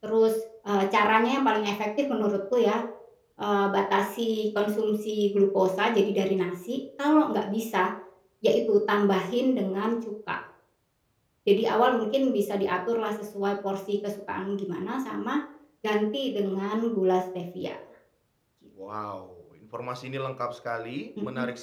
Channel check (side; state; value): both; identical; correlation 1.00